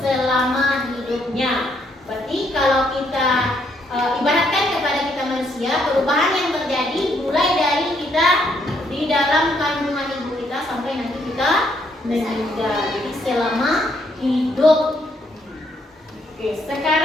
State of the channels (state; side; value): normal; both; correlation 0.72